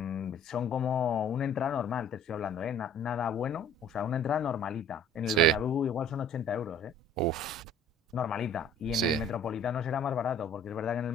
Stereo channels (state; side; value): normal; both; correlation 0.52